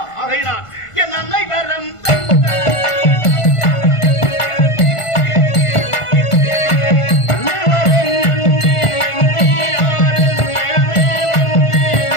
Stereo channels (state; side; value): late; right; 1.5 ms